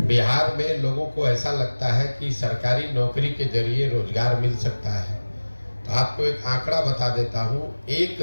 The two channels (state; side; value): inverted; both; correlation -1.00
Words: बिहार में लोगों को ऐसा लगता है कि सरकारी नौकरी के जरिए रोजगार मिल सकता है। तो आपको एक आंकड़ा बता देता हूँ,